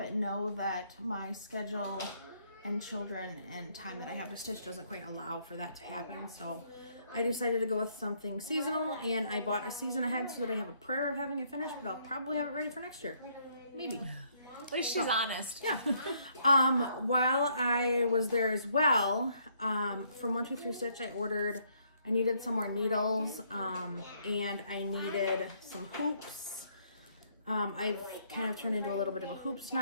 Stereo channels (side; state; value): both; inverted; correlation -0.69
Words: know that my schedule and children and time that I have to stitch doesn't quite allow for that to happen. So I decided to go with something seasonal, and I bought a season ahead so that I have a prayer of having it finished, but I'll probably have it ready for next year. Maybe. At least she's honest. Yeah. While I was there as well, from 123 Stitch, I needed some more needles, and I needed some hoops. I've kind of turned into a little bit of a hoop